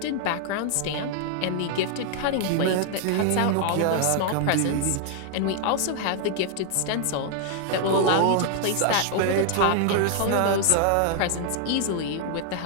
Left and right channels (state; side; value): different; both; correlation 0.00